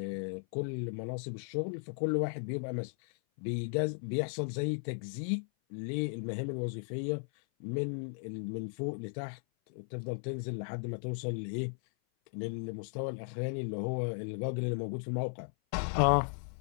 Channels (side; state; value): right; silent; 54 dB below the other